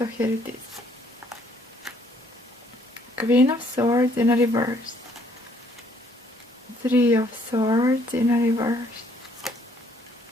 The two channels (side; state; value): both; normal; correlation 0.64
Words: here it is. Queen of Swords in a reverse. 3 of Swords in a reverse.